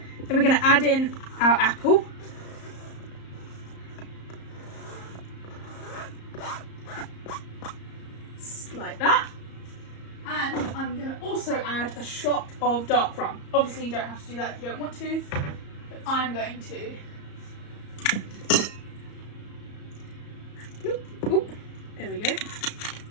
Then we're going to add in our apple. Like that. And I'm going to also add a shot of dark rum. Obviously you don't have to do that if you don't want to, but I'm going to. Oop, there we go.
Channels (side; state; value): right; late; 34 ms